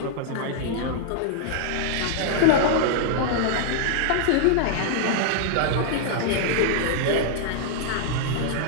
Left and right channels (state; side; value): different; both; correlation -0.01